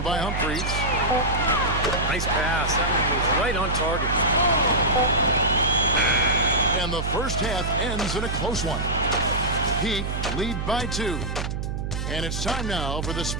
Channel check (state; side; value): noise; right; hum, 3 dB below the sound